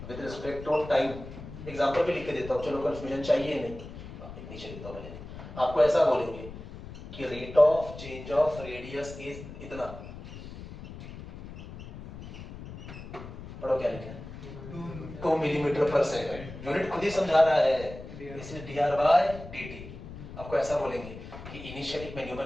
with respect to time। Example भी लिख के देता हूँ, चलो कंफ्यूजन चाहिए नहीं, नीचे लिखता हूँ मैंने। आपको ऐसा बोलेंगे कि rate of change of radius is इतना, पढ़ो क्या लिखा है, 2 मिलीमीटर पर सेकंड, यूनिट खुद ही समझा रहा है, इसलिए dr by dt। आपको ऐसा बोलेंगे कि इनिशियली मैं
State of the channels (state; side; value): noise; left; rumble, 13 dB below the sound